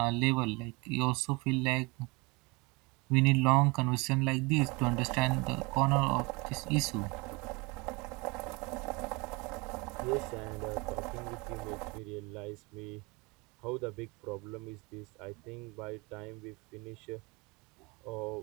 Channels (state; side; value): quieter; left; 26.9 dB